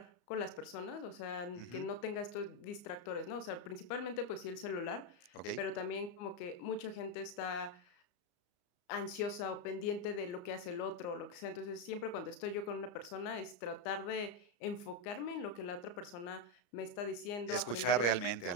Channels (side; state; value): right; late; 34 ms